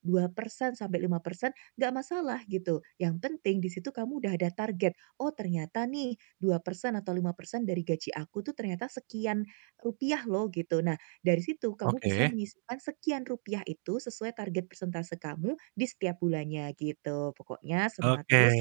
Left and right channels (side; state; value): left; silent; 56 dB below the other